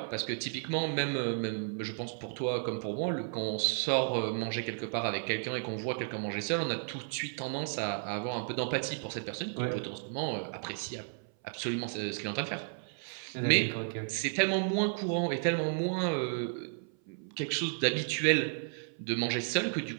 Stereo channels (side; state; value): left; silent; 56 dB below the other